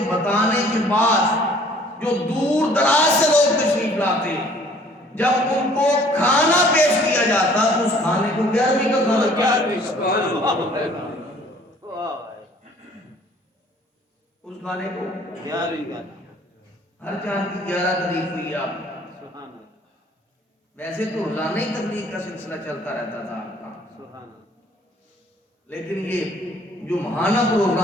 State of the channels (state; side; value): normal; both; correlation 0.56